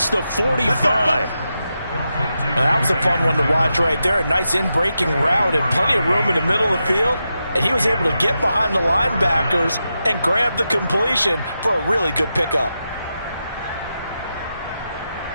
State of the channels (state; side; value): inverted; both; correlation -0.88